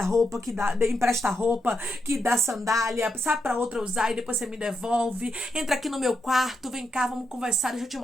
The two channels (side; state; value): both; normal; correlation 0.83